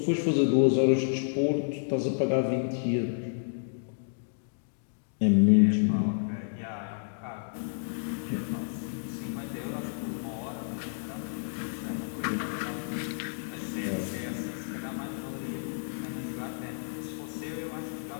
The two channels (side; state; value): right; silent; digital silence